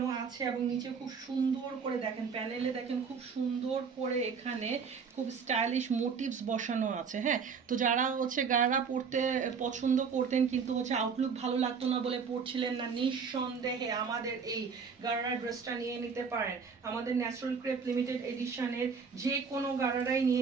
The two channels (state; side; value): quieter; left; 5.8 dB